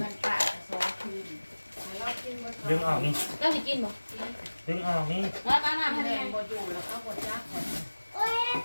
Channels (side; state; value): both; inverted; correlation -1.00